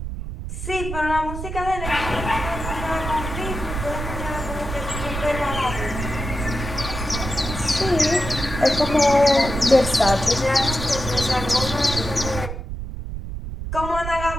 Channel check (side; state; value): right; noise; rumble, 6 dB below the sound